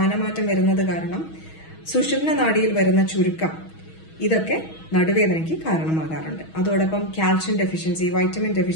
വരുന്നത് കാരണം സുഷുമ്ന നാഡിയിൽ വരുന്ന ചുരുക്കം, ഇതൊക്കെ നടുവേദനയ്ക്ക് കാരണമാകാറുണ്ട്. അതോടൊപ്പം കാൽഷ്യം ഡെഫിഷ്യൻസി, വൈറ്റമിൻ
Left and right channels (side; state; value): right; late; 6.2 ms